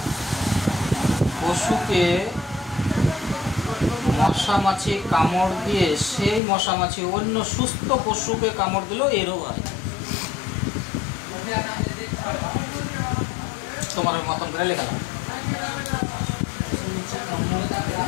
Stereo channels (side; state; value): right; drops out; at 6.4 s